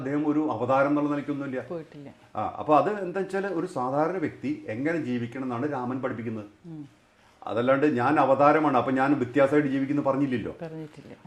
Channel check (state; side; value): identical; both; correlation 1.00